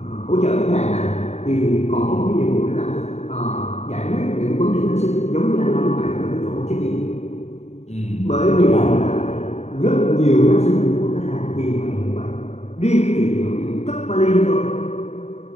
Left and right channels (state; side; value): late; right; 0.32 ms